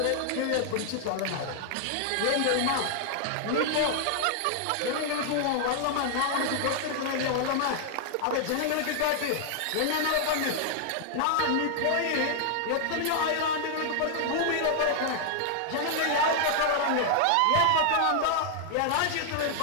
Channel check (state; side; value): different; both; correlation 0.00